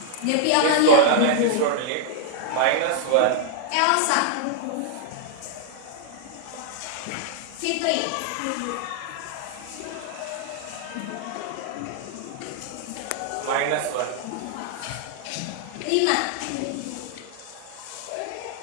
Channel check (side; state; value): both; different; correlation 0.00